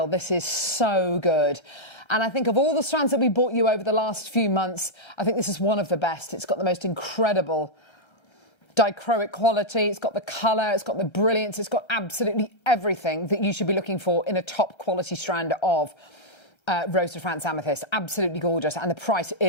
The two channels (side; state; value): right; late; 1.3 ms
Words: This is so good. And I think of all the strands that we brought you over the last few months, I think this is one of the best. It's got the most incredible dichroic quality. It's got the colour. It's got the brilliance. It's got absolutely everything that you should be looking for in a top quality strand of Rose de France Amethyst. Absolutely gorgeous. And the price